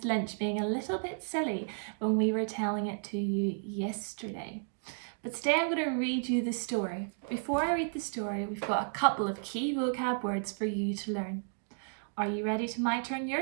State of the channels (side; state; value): left; silent; digital silence